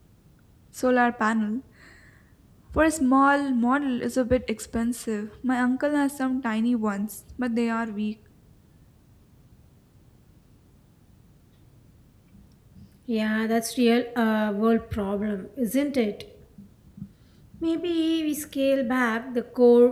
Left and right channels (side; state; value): both; identical; correlation 1.00